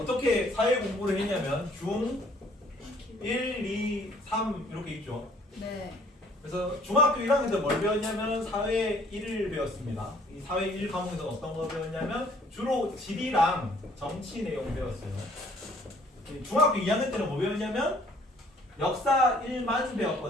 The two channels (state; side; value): normal; both; correlation 0.59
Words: 사회 공부를 했냐면 중 1, 2, 3 이렇게 있죠. 네. 그래서 중학교 1학년 때 뭘 배웠냐면 사회 1을 배웠습니다. 이 사회 1 과목에서 어떤 거 배웠냐면 주로 지리랑 정치 내용 배웠어요. 중학교 2학년 때는 뭐 배웠냐면 역사 1만